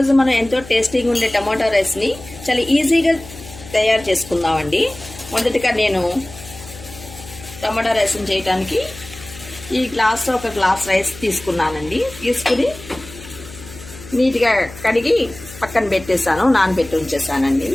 మనం ఎంతో టేస్టీగా ఉండే టమాటా రైస్ని చాలా ఈజీగా తయారు చేసుకుందామండి. మొదటిగా నేను టమాటా రైస్ని చేయడానికి ఈ గ్లాస్లో ఒక గ్లాస్ రైస్ తీసుకున్నానండి. తీసుకుని నీట్గా కడిగి పక్కన పెట్టేశాను, నానబెట్టి ఉంచేసానండి.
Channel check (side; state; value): left; noise; hum, 17 dB below the sound